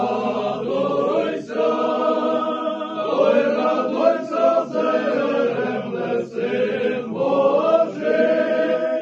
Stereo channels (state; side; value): identical; both; correlation 1.00